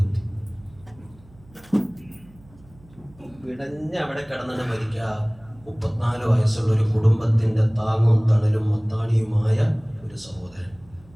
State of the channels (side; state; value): right; noise; hum, 26 dB below the sound